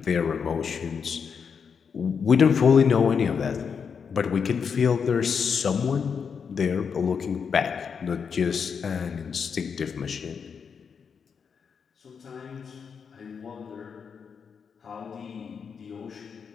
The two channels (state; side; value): quieter; right; 6.4 dB